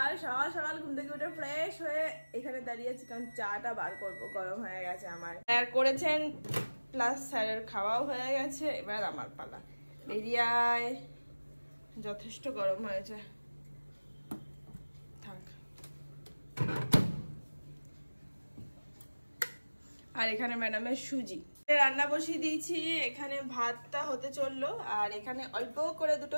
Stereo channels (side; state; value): both; inverted; correlation -1.00